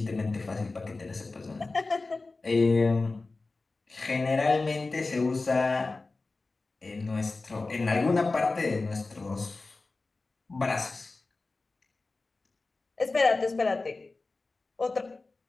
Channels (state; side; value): quieter; right; 3.5 dB